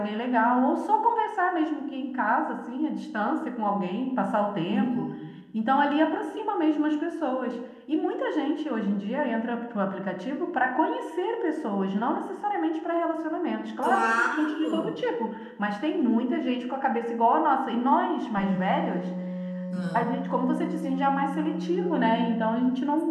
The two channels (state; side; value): identical; both; correlation 1.00